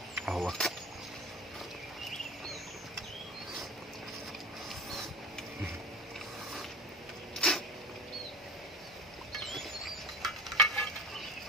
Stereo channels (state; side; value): normal; both; correlation 0.34